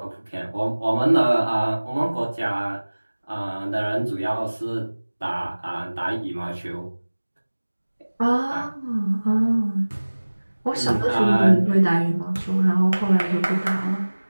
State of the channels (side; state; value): both; inverted; correlation -1.00